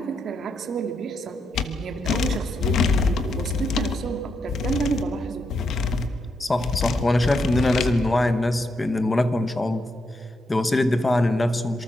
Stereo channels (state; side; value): normal; both; correlation 0.81